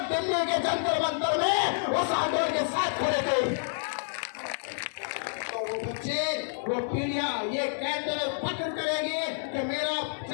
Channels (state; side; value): silent; right; digital silence